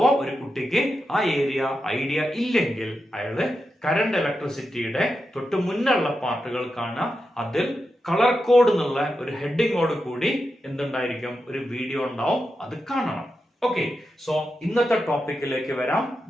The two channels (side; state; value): both; normal; correlation 0.88